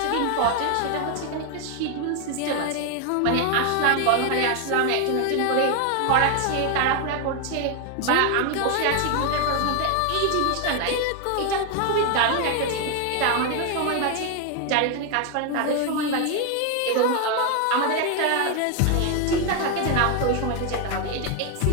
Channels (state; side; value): different; both; correlation 0.01